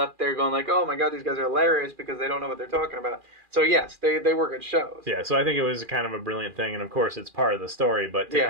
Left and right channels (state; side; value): late; left; 2.4 ms